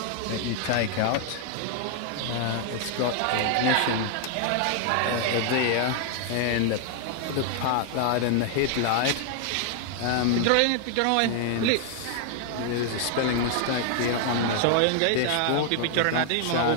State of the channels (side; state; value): both; different; correlation 0.00